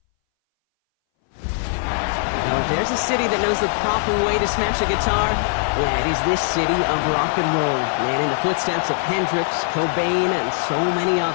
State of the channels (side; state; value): right; silent; 61 dB below the other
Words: Now, if there's a city that knows the proper way to smash a guitar, yeah, it is this city of rock and roll, man, in the footsteps of Hendrix, Cobain, and so many